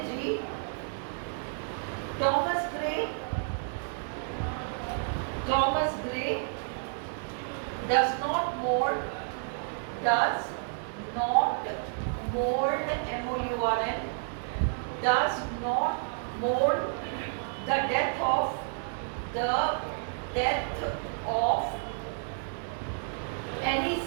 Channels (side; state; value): left; silent; 57 dB below the other